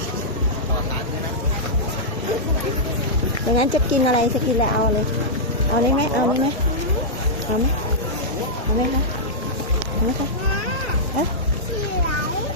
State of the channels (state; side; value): normal; both; correlation -0.10